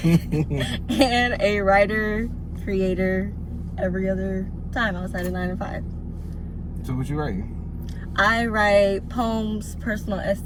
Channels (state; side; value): identical; both; correlation 1.00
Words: and a writer, creator every other time outside of 9 to 5. So what you write? I write poems, personal